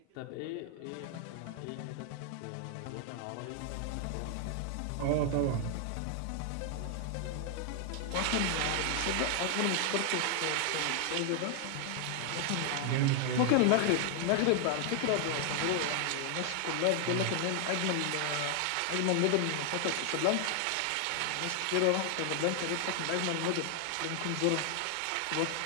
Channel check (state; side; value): different; both; correlation 0.00